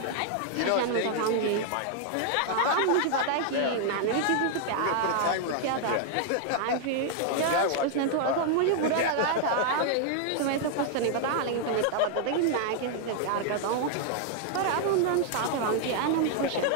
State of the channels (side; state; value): both; different; correlation 0.00